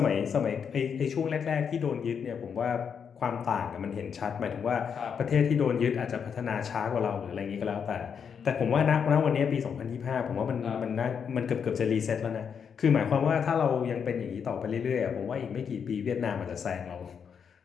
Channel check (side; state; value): right; quieter; 7.0 dB